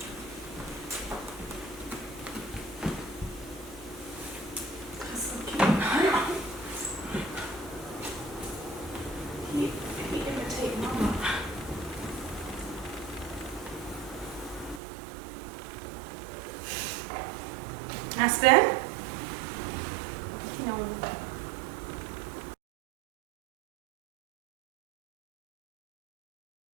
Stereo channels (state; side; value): drops out; left; at 14.8 s